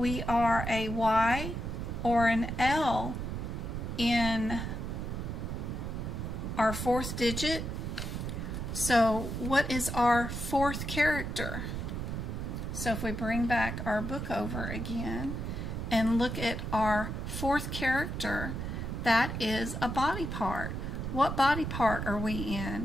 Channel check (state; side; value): noise; right; rumble, 4 dB below the sound